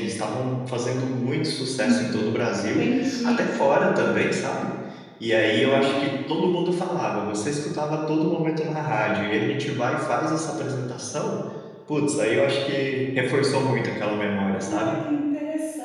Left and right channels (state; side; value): identical; both; correlation 1.00